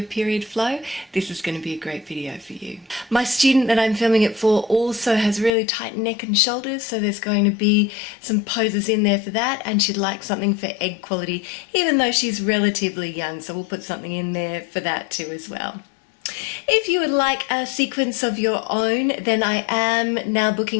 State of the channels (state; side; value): drops out; right; at 5.5 s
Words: period flow, this is going to be a great video for you. My student that I'm filming it for also has really tight neck and shoulders, so there's going to be some poses in there for that, and she'd like something for egg quality even though she's relatively young, so we'll put something in there for that too as well. If you would like a sequence of your own, then I am now